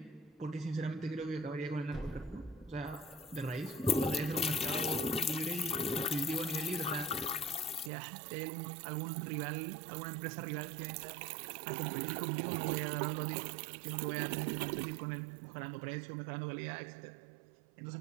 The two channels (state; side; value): drops out; left; at 7.9 s